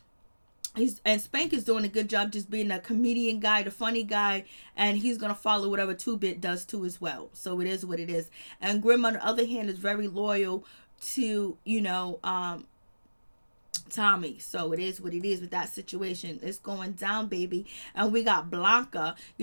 Spank is doing a good job just being a comedian guy, the funny guy, and he's gonna follow whatever 2-Bit does too as well. So it is what it is. And Grim, on the other hand, is very loyal to Tommy. So it is what it is with that situation. It's going down, baby. And we got Blanca.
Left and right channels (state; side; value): inverted; both; correlation -1.00